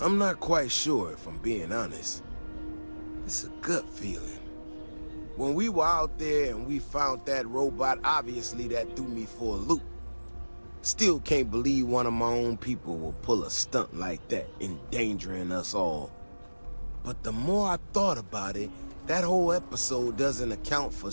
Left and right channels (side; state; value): both; inverted; correlation -1.00